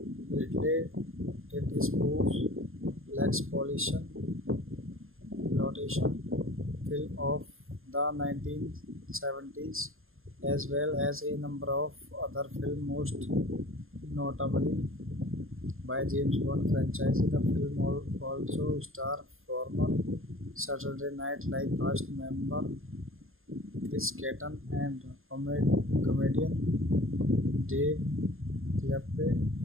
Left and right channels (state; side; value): late; left; 0.60 ms